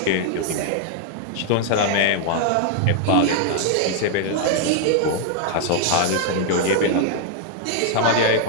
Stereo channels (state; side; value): different; both; correlation 0.00